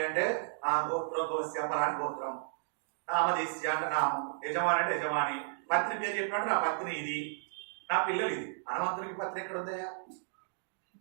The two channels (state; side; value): silent; left; digital silence